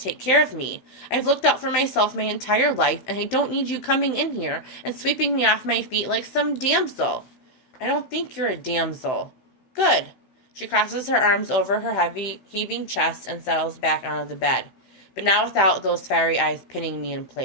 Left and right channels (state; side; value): late; right; 16 ms